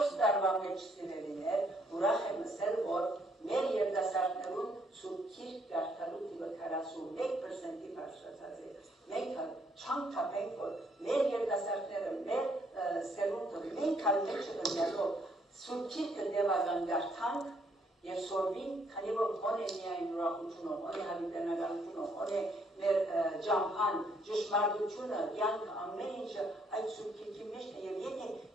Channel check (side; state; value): both; normal; correlation 0.69